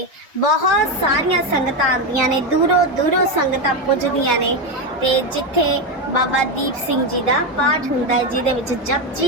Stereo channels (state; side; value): normal; both; correlation 0.11